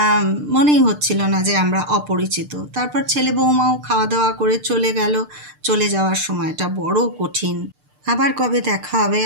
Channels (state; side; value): late; left; 6.7 ms